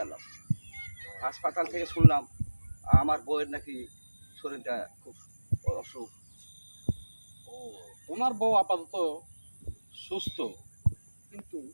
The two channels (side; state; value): both; inverted; correlation -1.00